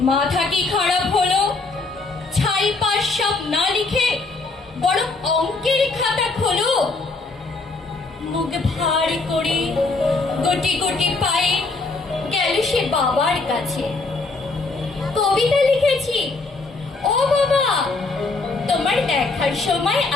মাথা কি খারাপ হলো? ছাই পাশ সব না লিখে বড় অঙ্কের খাতা খোলো। মুখ ভার করে গটি গটি পায়ে গেল সে বাবার কাছে। কবিতা লিখেছি, ও বাবা, তোমার দেখার সময়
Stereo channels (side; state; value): right; quieter; 3.6 dB